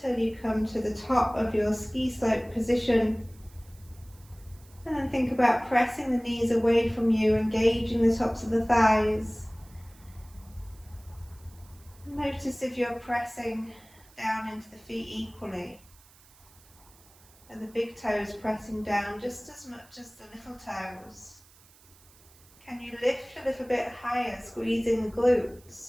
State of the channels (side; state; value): right; noise; hiss, 26 dB below the sound